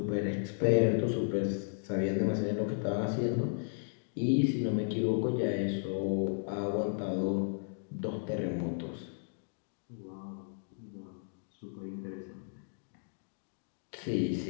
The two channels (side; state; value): right; silent; digital silence